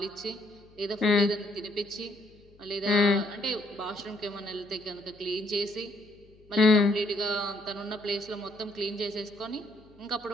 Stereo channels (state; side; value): noise; left; hum, 27 dB below the sound